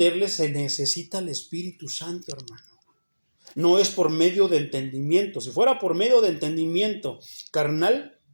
se necesita el Espíritu Santo, hermano. No es por medio de entendimiento. Si fuera por medio de entendimiento carnal,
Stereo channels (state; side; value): inverted; both; correlation -1.00